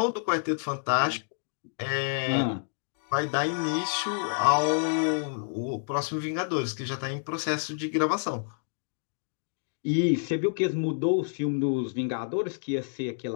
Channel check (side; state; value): right; silent; digital silence